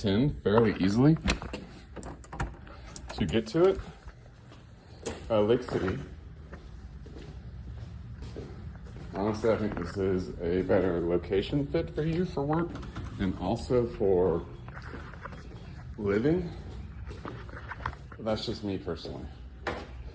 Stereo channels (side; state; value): both; identical; correlation 1.00